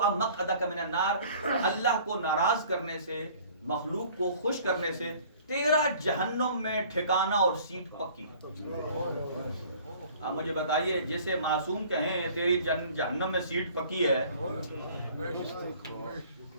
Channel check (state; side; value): inverted; both; correlation -0.51